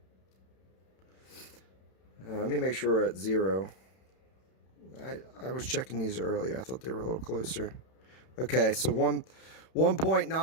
Let me make sure we're at 0. I was checking these earlier. I thought they were a little closer. Okay, so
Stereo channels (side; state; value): right; late; 31 ms